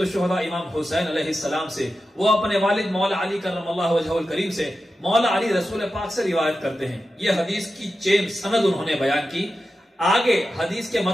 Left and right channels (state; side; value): normal; both; correlation 0.91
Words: امام حسین علیہ السلام سے، وہ اپنے والد مولا علی کرم اللہ وجہہ الکریم سے، مولا علی رسول پاک سے روایت کرتے ہیں۔ یہ حدیث کی چین سند انہوں نے بیان کی۔ آگے حدیث کے